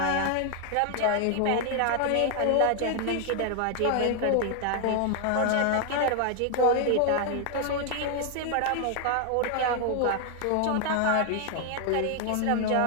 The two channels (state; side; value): different; both; correlation 0.00